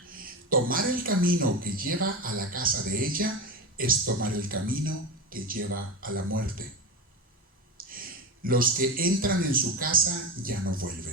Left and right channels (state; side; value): normal; both; correlation 0.20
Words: Tomar el camino que lleva a la casa de ella es tomar el camino que lleva a la muerte. Los que entran en su casa ya no